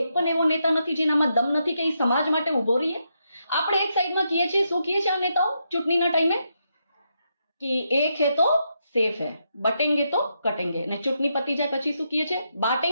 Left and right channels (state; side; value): inverted; both; correlation -0.82